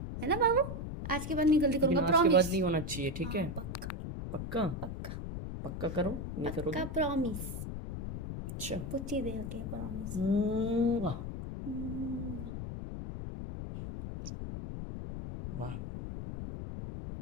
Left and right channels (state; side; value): noise; left; rumble, 6 dB below the sound